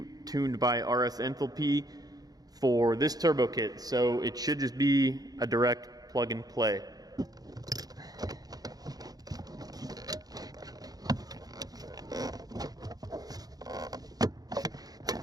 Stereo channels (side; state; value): left; late; 0.19 ms